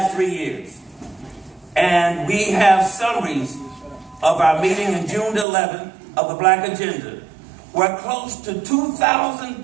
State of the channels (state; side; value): drops out; left; at 5.5 s